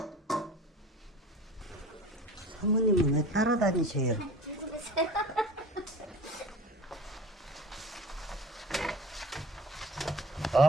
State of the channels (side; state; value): both; normal; correlation 0.40